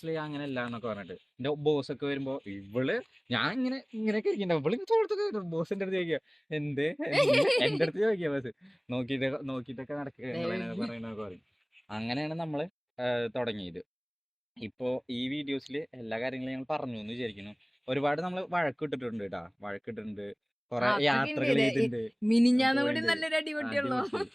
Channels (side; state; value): both; identical; correlation 1.00